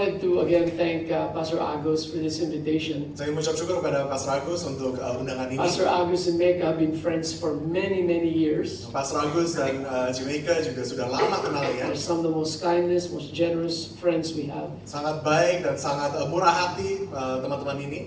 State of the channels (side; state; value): both; identical; correlation 1.00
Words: to again thank Pastor Agus for this invitation. Saya mengucap syukur kepada Pastor Agus untuk undangan ini. Pastor Agus and Mecca have been friends for many years. Pastor Agus dan Jamaica juga sudah lama kenal ya. They're some of the most kindest, most generous friends we have. Sangat baik dan sangat murah hati teman-teman